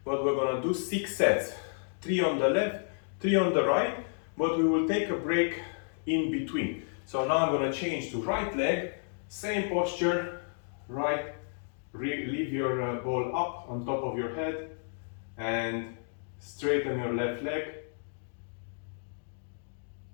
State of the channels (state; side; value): silent; right; digital silence